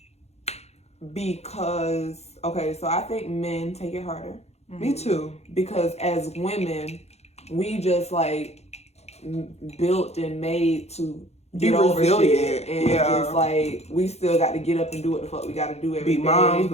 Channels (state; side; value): late; right; 0.31 ms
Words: because so I think men take it harder. Me too. Because as women, we just like built and made to get over shit, and just like we still got to get up and do what the fuck we got to do every day. Be moms,